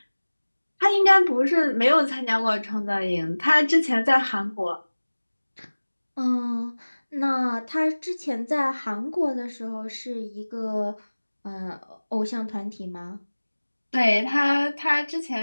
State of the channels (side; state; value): both; inverted; correlation -1.00